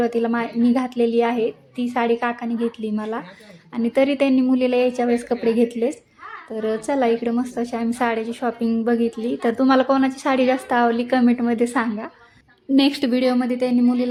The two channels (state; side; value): identical; both; correlation 1.00